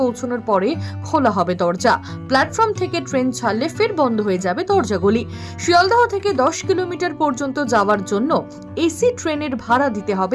পৌঁছানোর পরে খোলা হবে দরজা। প্ল্যাটফর্ম থেকে ট্রেন ছাড়লে ফের বন্ধ হয়ে যাবে দরজাগুলি। শিয়ালদহ থেকে 10 কিলোমিটার পর্যন্ত যাওয়ার জন্য এসি ট্রেনের ভাড়া দিতে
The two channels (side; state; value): both; identical; correlation 1.00